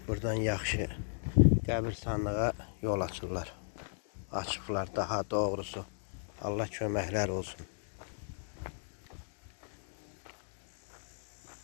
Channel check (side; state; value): right; silent; 54 dB below the other